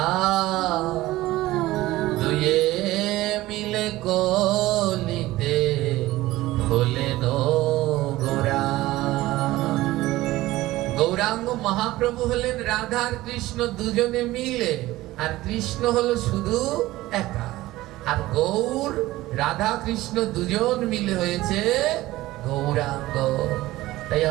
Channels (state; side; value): quieter; left; 17.3 dB